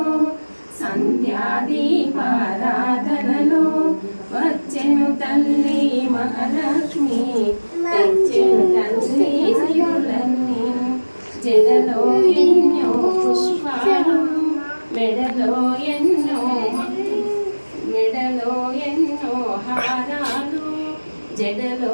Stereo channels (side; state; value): both; inverted; correlation -1.00